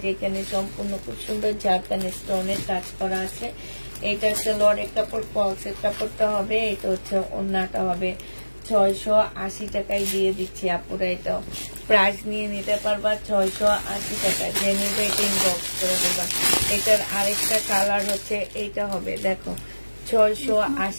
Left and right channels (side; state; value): both; inverted; correlation -1.00